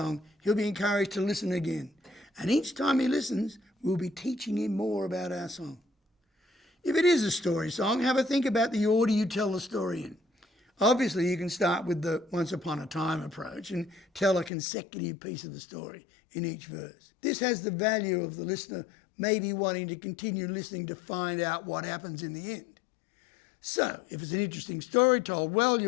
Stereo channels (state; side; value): drops out; right; at 14.5 s